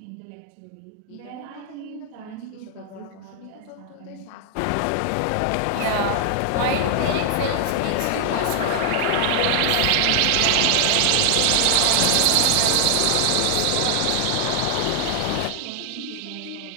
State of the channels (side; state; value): both; different; correlation 0.00